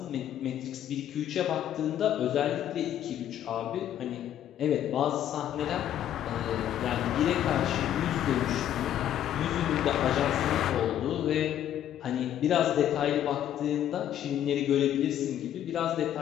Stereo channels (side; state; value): right; quieter; 11.0 dB